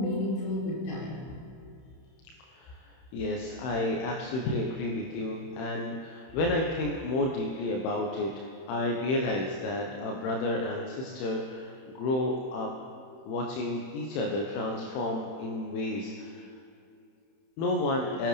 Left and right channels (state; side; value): late; right; 31 ms